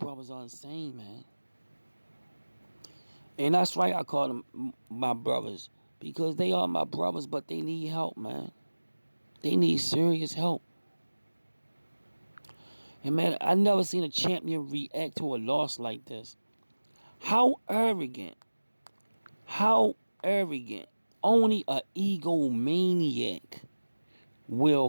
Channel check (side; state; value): both; inverted; correlation -1.00